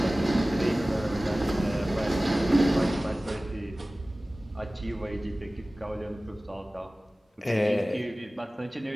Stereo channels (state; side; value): normal; both; correlation 0.97